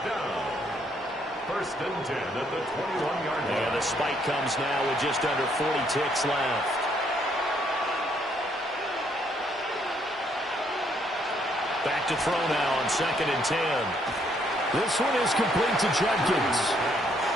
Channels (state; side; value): normal; both; correlation 0.70